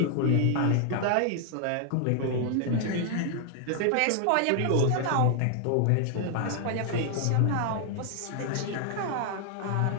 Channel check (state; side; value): different; both; correlation 0.00